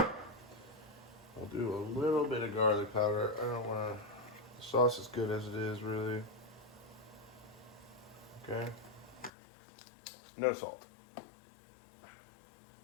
I'll do a little bit of garlic powder. I don't want to. The sauce is good as it is, really. Okay. No salt.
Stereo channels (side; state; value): right; drops out; at 9.3 s